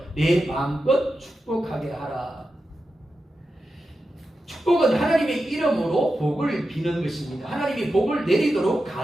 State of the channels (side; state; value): both; normal; correlation 0.90